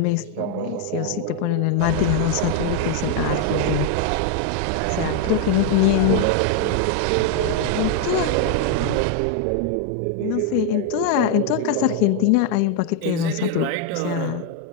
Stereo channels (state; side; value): different; both; correlation 0.01